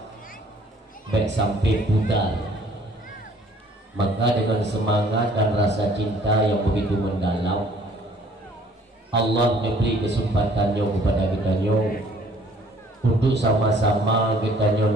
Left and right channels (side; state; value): both; normal; correlation 0.58